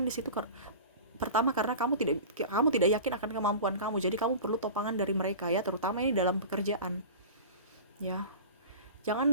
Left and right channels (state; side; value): inverted; both; correlation -0.35